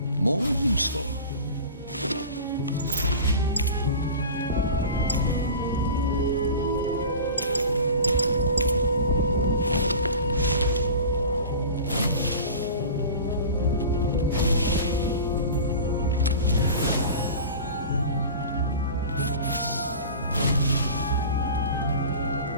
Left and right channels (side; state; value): both; inverted; correlation -0.36